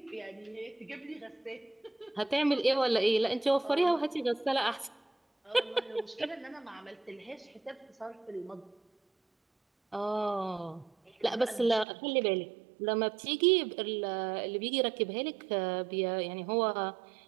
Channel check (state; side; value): drops out; left; at 11.9 s